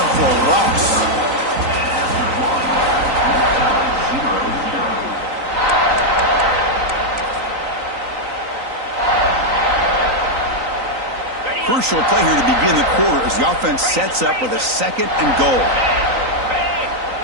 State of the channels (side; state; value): left; late; 3.9 ms